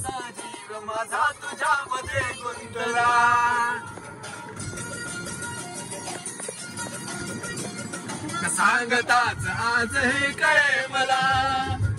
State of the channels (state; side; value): identical; both; correlation 1.00